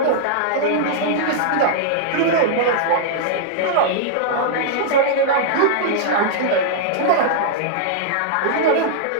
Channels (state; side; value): different; both; correlation -0.01